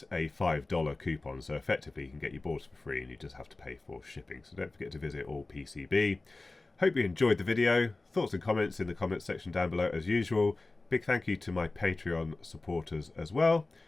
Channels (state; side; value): quieter; right; 3.2 dB